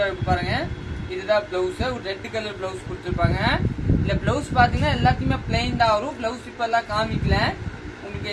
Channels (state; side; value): identical; both; correlation 1.00